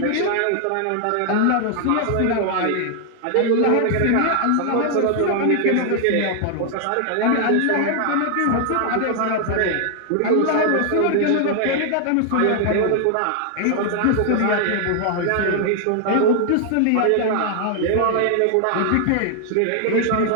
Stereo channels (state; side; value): different; both; correlation 0.00